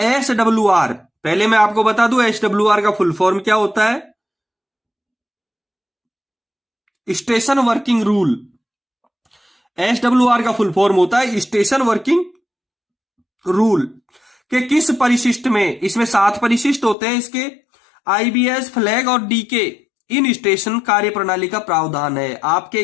SWR, पहले मैं आपको बता दूं SWR का फुल फॉर्म क्या होता है, स्टेशन वर्किंग रूल। SWR का फुल फॉर्म होता है स्टेशन वर्किंग रूल के किस परिशिष्ट में, इसमें 7 परिशिष्ट होते हैं इसके, IBS, फ्लैग और DK इन स्टेशन कार्य प्रणाली का प्रावधान है। आपके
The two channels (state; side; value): drops out; right; at 16.9 s